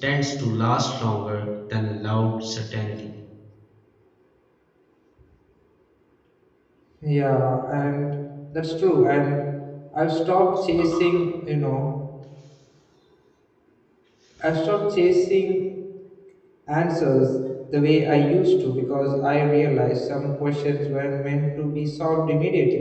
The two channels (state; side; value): identical; both; correlation 1.00